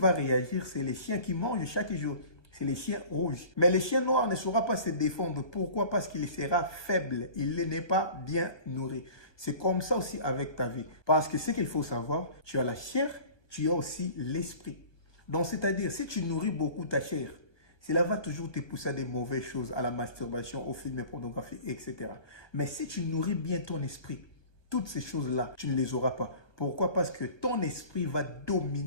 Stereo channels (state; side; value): late; right; 1.2 ms